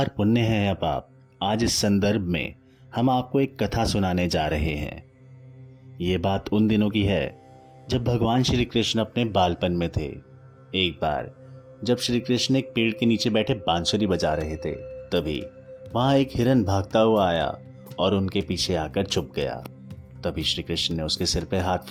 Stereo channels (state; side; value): identical; both; correlation 1.00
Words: पुण्य है या पाप? आज इस संदर्भ में हम आपको एक कथा सुनाने जा रहे हैं। ये बात उन दिनों की है जब भगवान श्री कृष्ण अपने बालपन में थे। एक बार जब श्री कृष्ण एक पेड़ के नीचे बैठे बांसुरी बजा रहे थे, तभी वहां एक हिरन भागता हुआ आया और उनके पीछे आकर छुप गया। तभी श्री कृष्ण ने उसके सिर पे हाथ